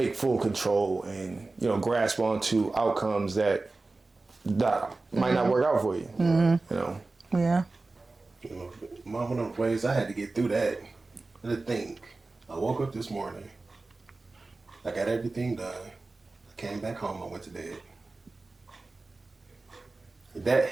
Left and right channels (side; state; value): left; quieter; 3.4 dB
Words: full control and, you know, grasp onto outcomes that might not work out for you. You know. Yeah. You know, one of those ways I had to get through that. To think, I woke up this morning, I got everything done, I came back home, I went to bed. That